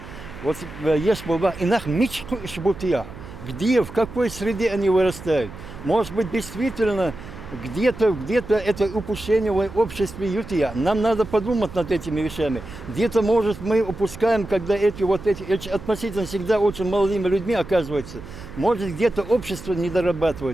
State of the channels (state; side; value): noise; right; hum, 15 dB below the sound